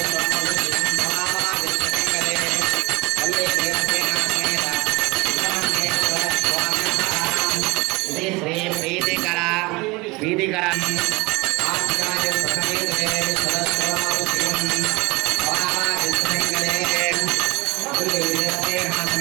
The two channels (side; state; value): left; quieter; 24.4 dB